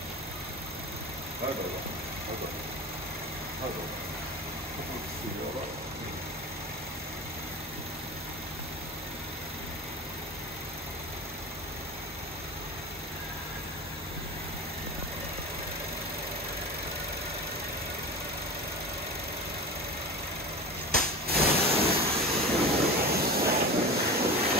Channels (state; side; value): normal; both; correlation 0.31